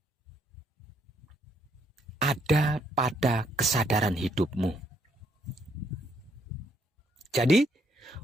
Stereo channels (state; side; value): normal; both; correlation 0.71